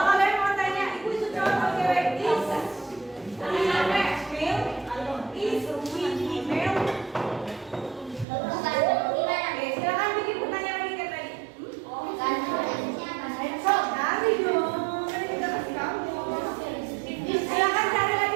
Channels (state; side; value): drops out; left; at 8.2 s